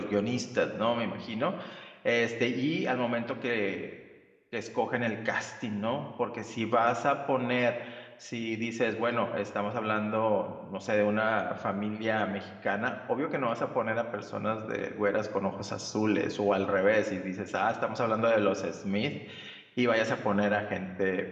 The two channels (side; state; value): both; identical; correlation 1.00